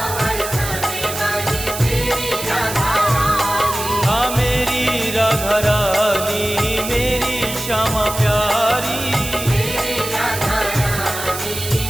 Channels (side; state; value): right; noise; hiss, 7 dB below the sound